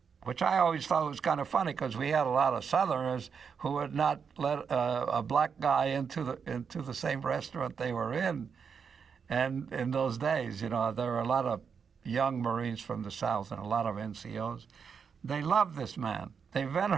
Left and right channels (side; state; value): left; quieter; 6.4 dB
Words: which I always thought was kind of funny because we had a lot of Southerners who would not let a black guy into the same restaurant they were in. And in those days, there were a lot of young Marines from the South and a lot of NCOs. They loved this man. They